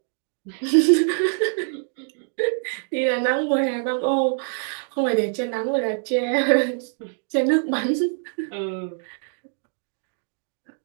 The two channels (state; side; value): silent; left; digital silence